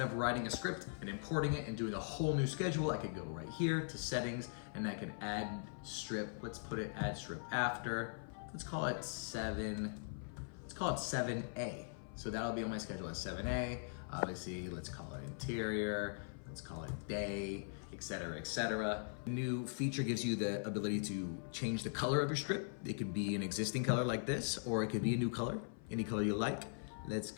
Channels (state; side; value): silent; right; 50 dB below the other